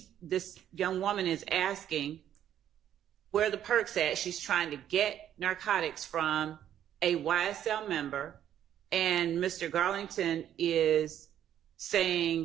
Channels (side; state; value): left; quieter; 10.6 dB